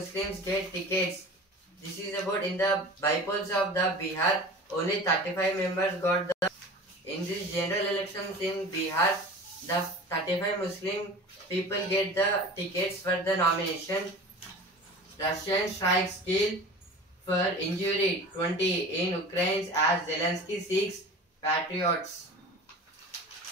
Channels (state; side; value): normal; both; correlation 0.37